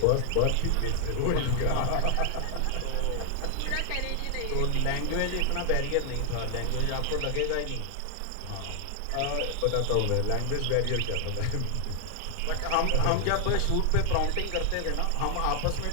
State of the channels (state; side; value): different; both; correlation 0.00